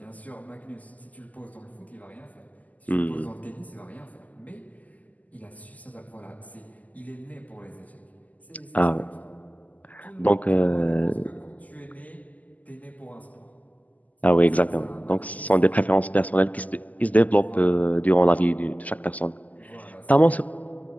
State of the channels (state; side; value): late; right; 0.077 ms